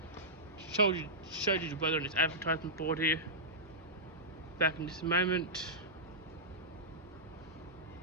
Showed you the weather on this advertisement board here. Back in just a moment.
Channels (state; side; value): normal; both; correlation -0.13